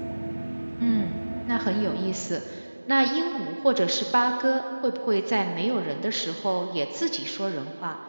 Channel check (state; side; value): inverted; both; correlation -1.00